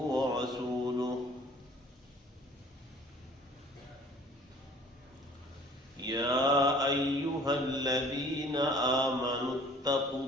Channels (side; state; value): both; normal; correlation 0.52